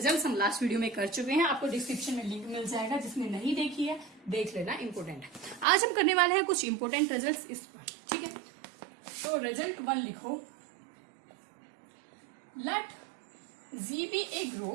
हम लास्ट वीडियो में कर चुके हैं। आपको डिस्क्रिप्शन में लिंक मिल जाएगा, जिसने नहीं देखी है देख लेना, इंपोर्टेंट है। आज हम करने वाले हैं कुछ इंपोर्टेंट रिजल्ट्स इस पर, ठीक है। तो रिजल्ट 1 लिखो, let G be a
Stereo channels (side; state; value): left; drops out; at 5.7 s